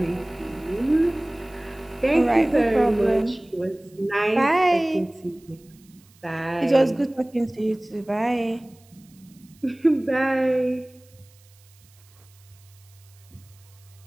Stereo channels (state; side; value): noise; right; hiss, 29 dB below the sound